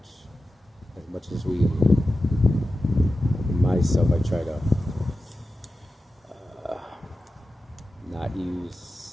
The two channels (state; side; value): normal; both; correlation 0.93